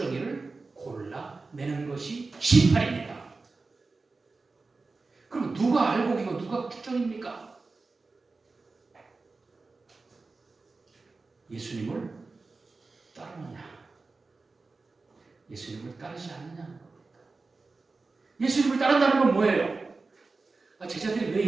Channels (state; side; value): quieter; left; 3.8 dB